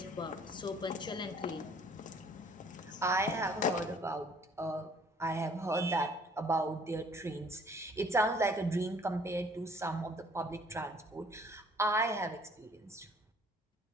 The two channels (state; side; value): normal; both; correlation 0.57